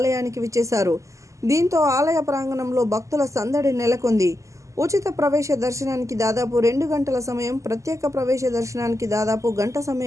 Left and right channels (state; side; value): late; left; 0.15 ms